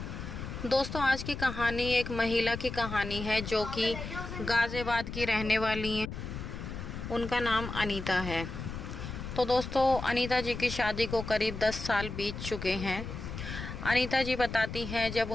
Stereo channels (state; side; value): noise; left; rumble, 7 dB below the sound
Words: दोस्तों, आज की कहानी एक महिला की कहानी है जो कि गाजियाबाद की रहने वाली हैं। उनका नाम अनीता है। तो दोस्तों, अनीता जी की शादी को करीब 10 साल बीत चुके हैं। अनीता जी बताती हैं, जब